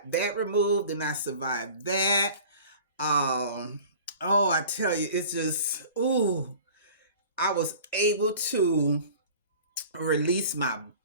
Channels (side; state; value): both; inverted; correlation -0.43